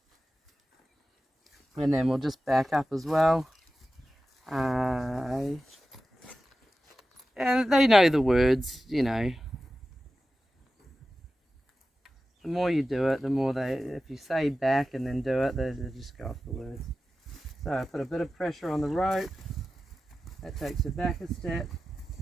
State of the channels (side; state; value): both; normal; correlation 0.94